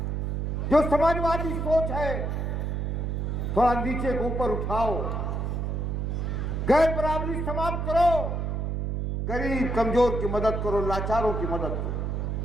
जो समाजवादी सोच है, थोड़ा नीचे को ऊपर उठाओ, गैर बराबरी समाप्त करो, गरीब कमजोर की मदद करो, लाचारों की मदद करो।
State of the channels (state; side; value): noise; right; hum, 1 dB below the sound